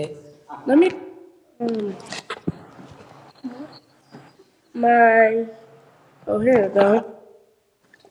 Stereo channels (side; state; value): both; identical; correlation 1.00